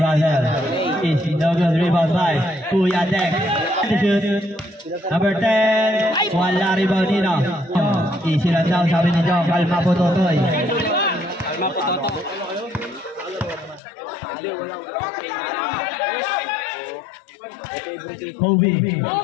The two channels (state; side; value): drops out; right; at 13.8 s